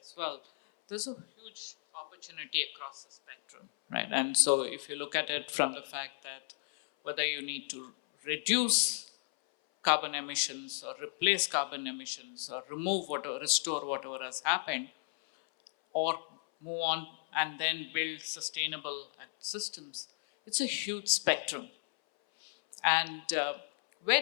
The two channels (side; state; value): right; silent; 55 dB below the other